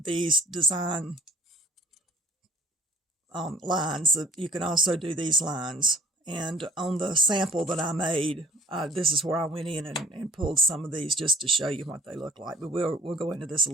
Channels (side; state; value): both; normal; correlation 0.50